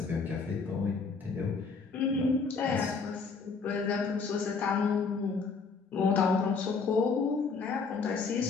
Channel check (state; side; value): quieter; right; 4.8 dB